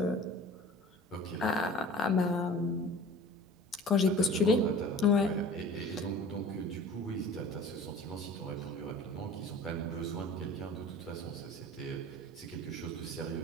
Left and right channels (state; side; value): normal; both; correlation 0.42